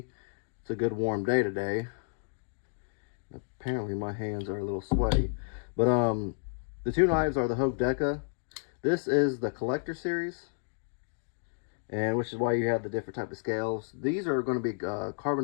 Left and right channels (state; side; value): silent; right; digital silence